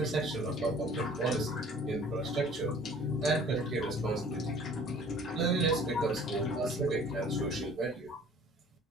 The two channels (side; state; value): both; normal; correlation 0.50